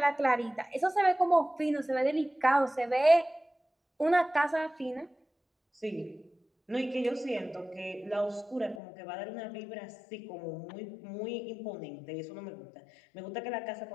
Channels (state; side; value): drops out; right; at 8.8 s